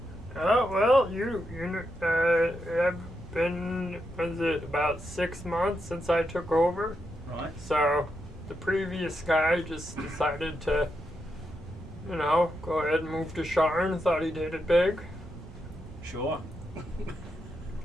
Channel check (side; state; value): both; normal; correlation 0.84